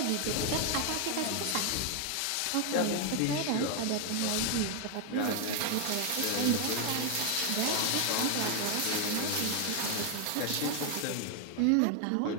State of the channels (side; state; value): both; different; correlation 0.00